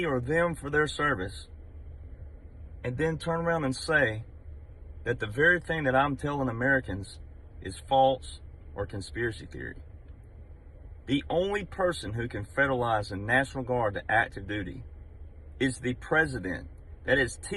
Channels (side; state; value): both; identical; correlation 1.00